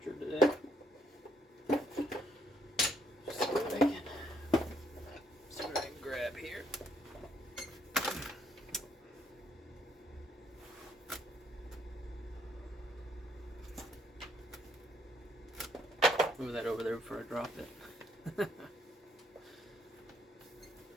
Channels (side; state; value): both; normal; correlation 0.70